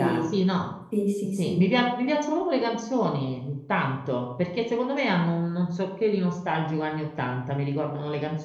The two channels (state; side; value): identical; both; correlation 1.00